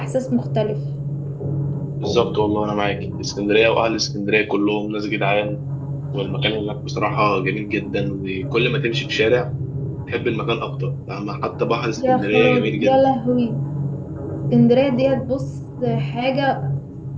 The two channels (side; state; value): both; identical; correlation 1.00